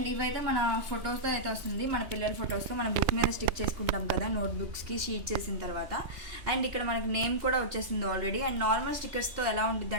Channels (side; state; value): left; late; 3.2 ms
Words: ఇవైతే మన ఫొటోస్తో అయితే వస్తుంది, మన పిల్లల ఫొటోస్తో మన బుక్ మీద స్టిక్ చేసుకుంటాం కదా నోట్బుక్స్కి షీట్ చేసిన తర్వాత. అండ్ ఇక్కడ మనకి నేమ్ కూడా వచ్చేసింది ఆల్రెడీ. అండ్ నార్మల్ స్టిక్కర్స్తో ఎలా ఉంటుంది